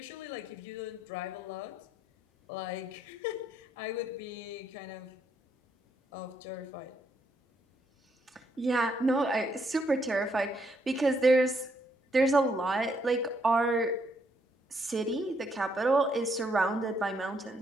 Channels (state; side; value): normal; both; correlation 0.74